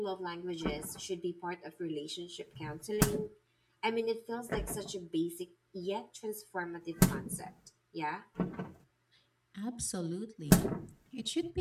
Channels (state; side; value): identical; both; correlation 1.00